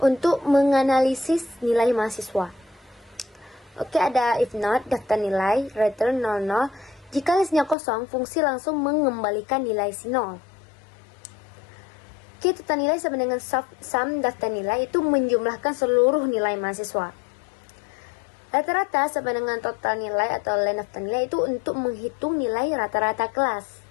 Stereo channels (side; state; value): right; drops out; at 7.8 s